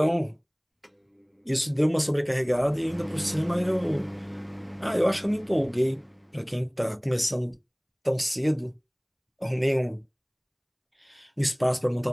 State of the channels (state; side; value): identical; both; correlation 1.00